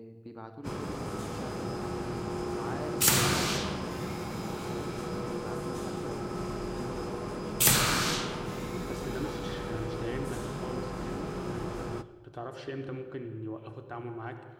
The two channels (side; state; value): both; identical; correlation 1.00